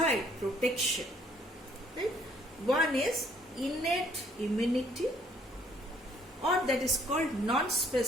protection, right? One is innate immunity, or that is called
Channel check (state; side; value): normal; both; correlation 0.63